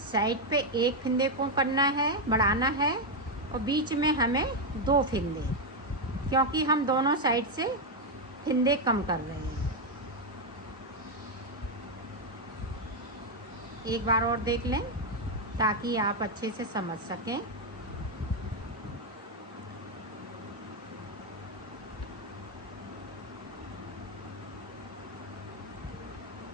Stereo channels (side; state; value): both; normal; correlation 0.03